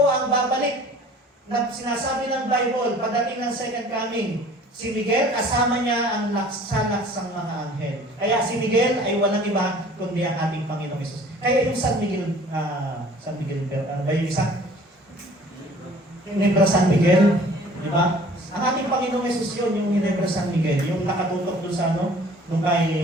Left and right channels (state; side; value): normal; both; correlation 0.50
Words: ang babalik na sinasabi ng Bible pagdating ng second coming? Si Miguel, kasama niya ang laksanaksang mga anghel. Kaya si Miguel ay walang iba kundi ang ating Panginoong Jesus. Kaya yung San Miguel, ano ba yung isa? Ginebra San Miguel, di ba? Ang ating Panginoong Jesus yun, yung Ginebra San Miguel, yung nakatutok doon sa nung